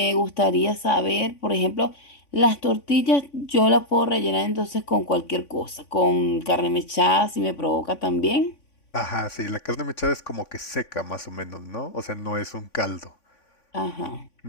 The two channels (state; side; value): late; right; 3.5 ms